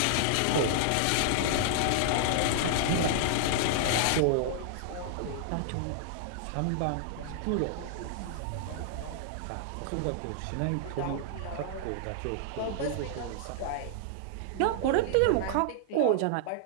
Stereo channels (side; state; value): both; different; correlation -0.01